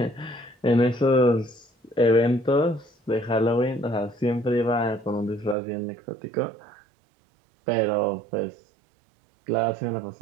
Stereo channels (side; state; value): left; drops out; at 5.6 s